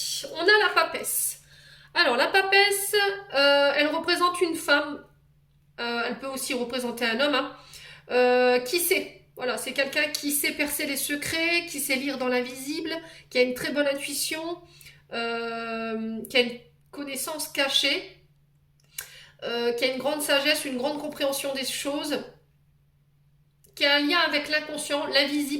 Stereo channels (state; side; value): identical; both; correlation 1.00